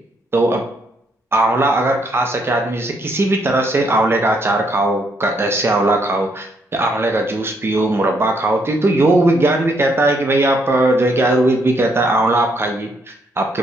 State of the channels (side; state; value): both; normal; correlation 0.72